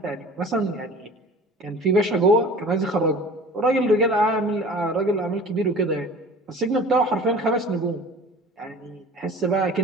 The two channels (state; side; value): normal; both; correlation 0.42